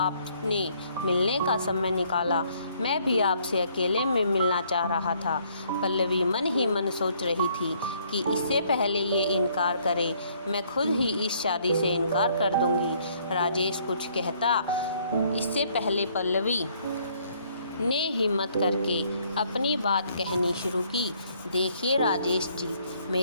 मिलने का समय निकाला। मैं भी आपसे अकेले में मिलना चाह रहा था। पल्लवी मन ही मन सोच रही थी कि इससे पहले ये इनकार करे, मैं खुद ही इस शादी से इनकार कर दूंगी। राजेश कुछ कहता इससे पहले पल्लवी ने हिम्मत करके अपनी बात कहनी शुरू की। देखिए राजेश जी,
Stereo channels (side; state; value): both; inverted; correlation -0.65